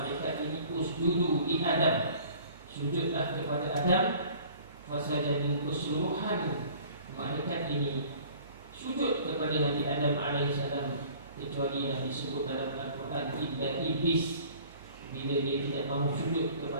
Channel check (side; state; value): both; inverted; correlation -0.49